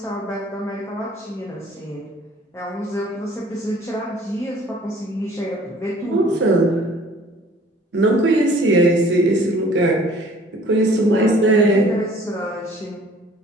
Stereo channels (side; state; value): both; normal; correlation 0.53